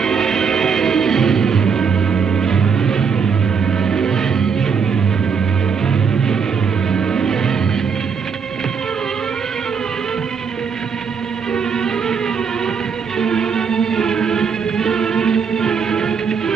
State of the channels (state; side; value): quieter; left; 6.1 dB